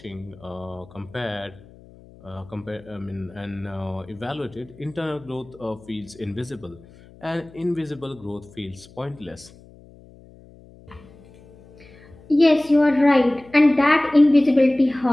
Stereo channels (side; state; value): left; noise; hum, 23 dB below the sound